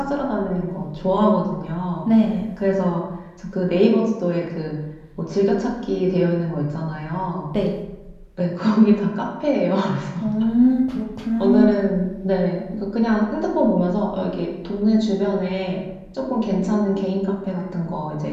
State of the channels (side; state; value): both; identical; correlation 1.00